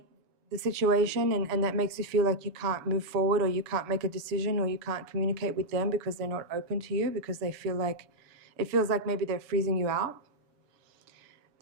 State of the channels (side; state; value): left; late; 7.0 ms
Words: the situation, and that makes you feel like you can't move forward, or you can't make a decision, or you can't communicate with them because they're not open to you, because they feel like, it feels like maybe they're freezing you out.